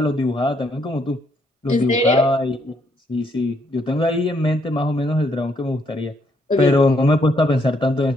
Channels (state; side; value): normal; both; correlation 0.72